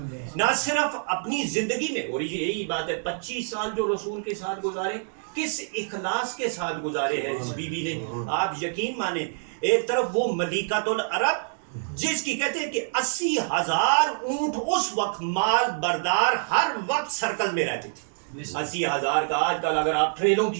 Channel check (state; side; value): silent; left; digital silence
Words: نہ صرف اپنی زندگی میں، اور یہی بات ہے 25 سال جو رسول کے ساتھ گزارے کس اخلاص کے ساتھ گزارے ہیں اس بی بی نے۔ آپ یقین مانیں ایک طرف وہ ملیکۃ العرب جس کی کہتے ہیں کہ 80,000 اونٹ اس وقت مال بردار ہر وقت سرکل میں رہتے تھے، 80,000 کا آج کل اگر آپ ٹریلوں